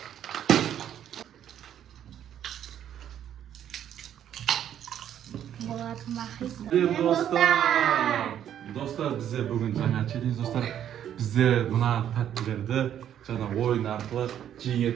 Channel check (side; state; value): left; quieter; 10.2 dB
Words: Dostlar bize bugün жаңа челлендж достlar. Bizde mına tatlılardı жаңа oyun arqылы